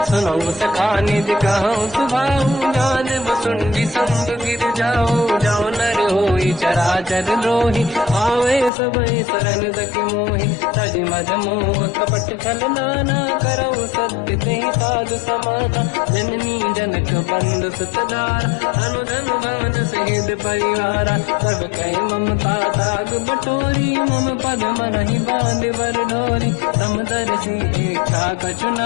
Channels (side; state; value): right; drops out; at 8.7 s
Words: सुनो सखा निज कहूँ सुभाऊ, जान वसुंडी संग गिर जाओ, जाओ नर होई चराचर द्रोही, आवे सबई शरण सखि मोहि, तज मद मोह कपट छल नाना, करऊ सत्य तेहि साधु समाता, जननी जनक बंधु सुतधारा, अनुधन भवन सहित परिवारा, सब कहि ममता ताग बटोरी, मम पद मनहि बांध बर डोरी, समदर्शी इच्छा कछु